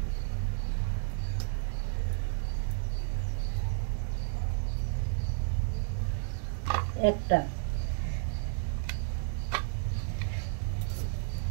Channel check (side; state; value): left; silent; digital silence